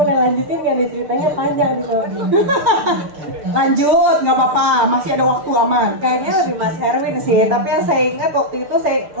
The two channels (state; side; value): late; left; 6.6 ms